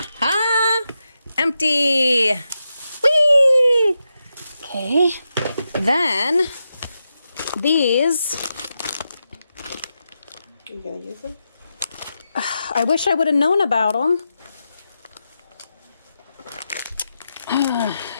ha! Empty! Whee! Okay, then these. Are you gonna use them? I wish I would have known about them.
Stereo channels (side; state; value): both; inverted; correlation -0.88